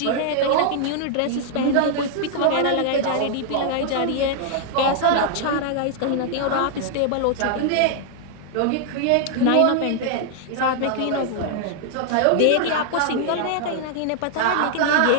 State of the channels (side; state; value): both; different; correlation 0.00